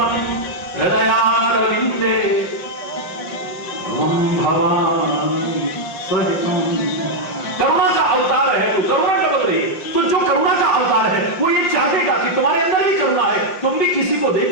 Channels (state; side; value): late; right; 5.6 ms